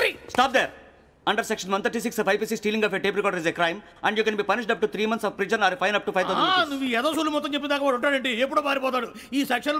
Stop there. Under section 136 of IPC, stealing of a tape recorder is a crime and you can be punished up to 3 months of prison or a fine up to 5,000 rupees. నువ్వు ఏదో సూలు మొత్తం చెప్పేదాకా వాడు ఉంటాడండి. ఎప్పుడో పారిపోతాడు. ఈ section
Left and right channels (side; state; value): both; identical; correlation 1.00